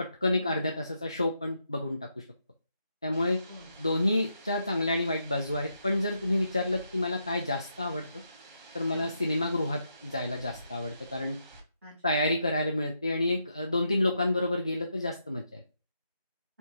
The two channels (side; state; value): both; inverted; correlation -0.81